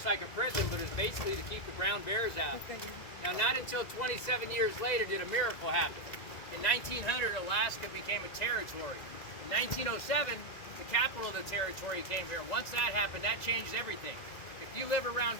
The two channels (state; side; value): late; right; 2.0 ms